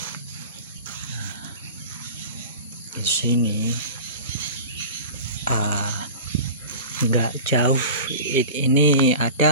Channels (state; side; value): inverted; both; correlation -0.35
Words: Nah, di sini nggak jauh ini